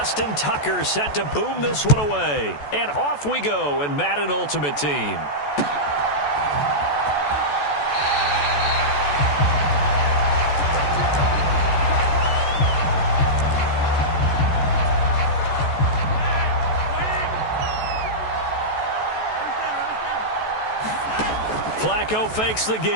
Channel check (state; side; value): late; right; 14 ms